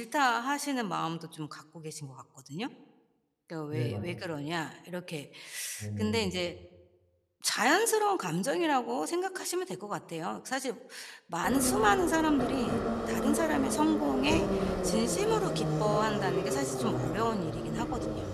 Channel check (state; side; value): identical; both; correlation 1.00